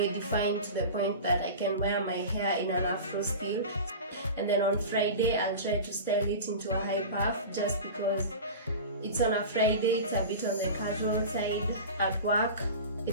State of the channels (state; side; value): inverted; both; correlation -0.31